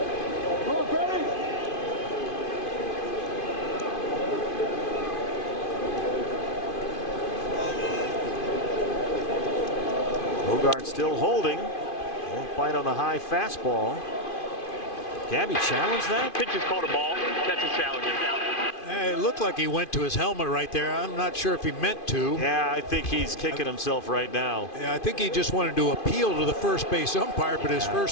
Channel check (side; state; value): right; late; 2.5 ms